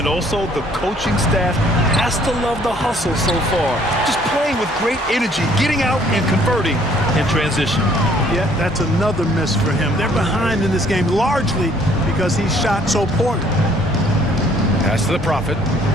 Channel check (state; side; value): normal; both; correlation 0.61